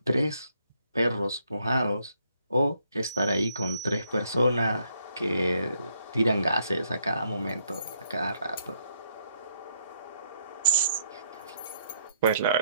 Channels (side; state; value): both; inverted; correlation -0.72